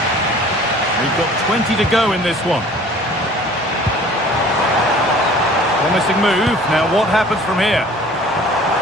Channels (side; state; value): both; normal; correlation 0.49